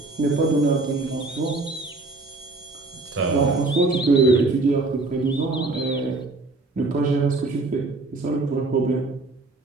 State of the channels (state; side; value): quieter; left; 3.2 dB